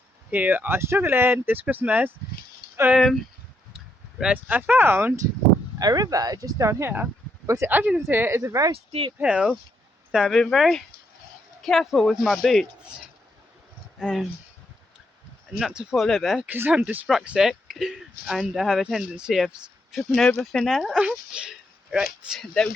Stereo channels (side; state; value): both; normal; correlation 0.78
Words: who are struggling this Christmas. Right, I found a river just down here, but as you can see, it's a very steep hill, so I've been very careful with my boots, not to fall over because I'm dyspraxic and I have a tendency of tripping over thin air. Right, there we